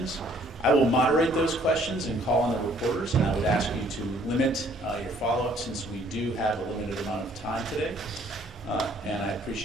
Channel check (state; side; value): normal; both; correlation 0.61